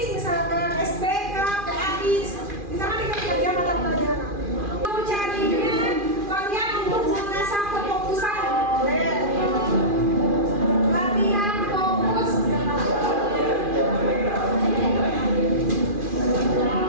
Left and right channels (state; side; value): late; left; 2.4 ms